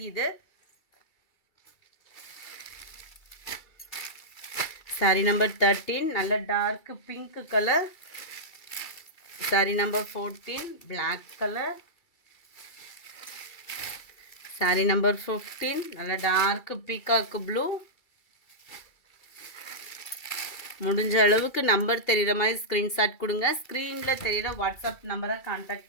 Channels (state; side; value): late; right; 2.3 ms